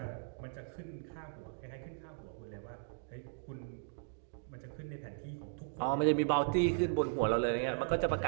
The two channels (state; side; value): silent; left; digital silence